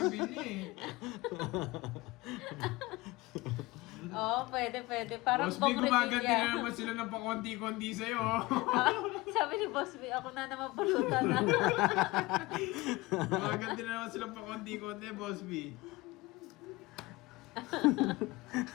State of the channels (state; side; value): quieter; right; 21.3 dB